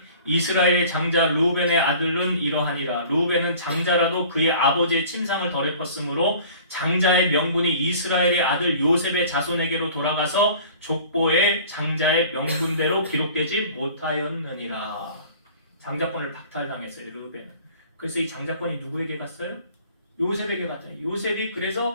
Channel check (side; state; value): both; inverted; correlation -0.47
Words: 이스라엘의 장자 르우벤의 아들은 이러하니라. 르우벤은 장자라도 그의 아버지의 침상을 더럽혔으므로 장자의 명분이 이스라엘의 아들 요셉의 자손에게로 돌아가서 족보의 장자의 명분대로 기록되지 못하였느니라. 장자권을 박탈당했어요. 르우벤은. 그래서 이 장자권이 누구에게 갔어요? 요셉에게 갔더니 요셉이